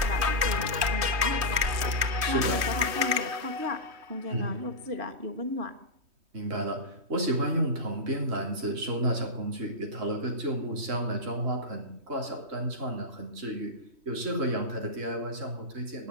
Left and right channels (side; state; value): left; late; 3.1 ms